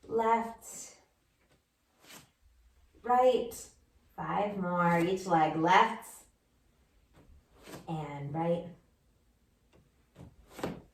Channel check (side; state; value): both; identical; correlation 1.00